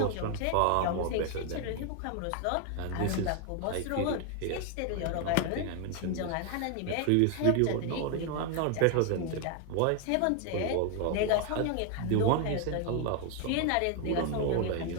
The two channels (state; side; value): different; both; correlation 0.00